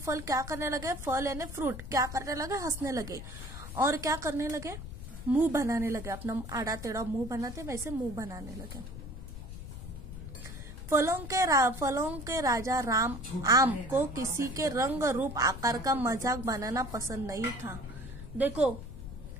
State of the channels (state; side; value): noise; left; rumble, 10 dB below the sound